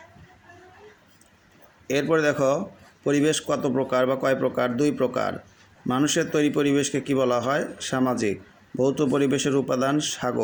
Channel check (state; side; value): identical; both; correlation 1.00